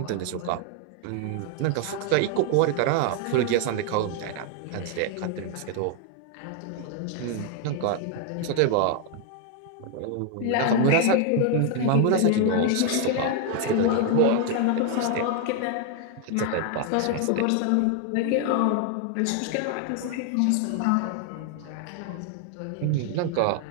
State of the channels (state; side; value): different; both; correlation 0.01